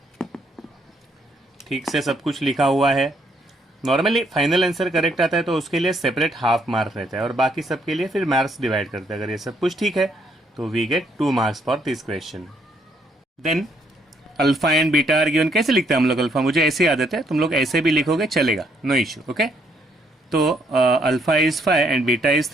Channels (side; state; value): both; normal; correlation 0.70